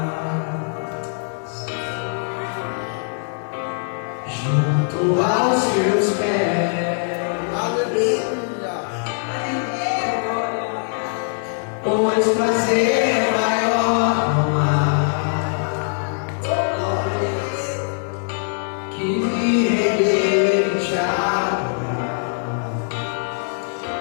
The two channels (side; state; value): right; silent; 62 dB below the other